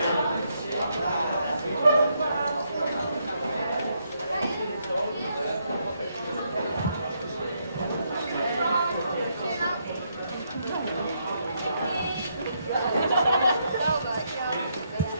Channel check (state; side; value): inverted; both; correlation -0.77